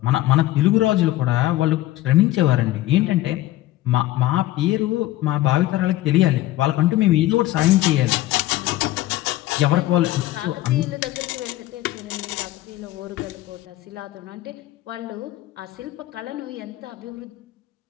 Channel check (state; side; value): quieter; right; 15.9 dB